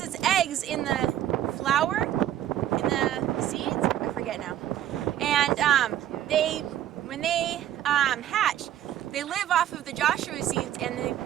its eggs in the flower, in the seeds. I forget now. And when they hatch, they live off of the Joshua seeds, and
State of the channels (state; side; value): quieter; left; 11.8 dB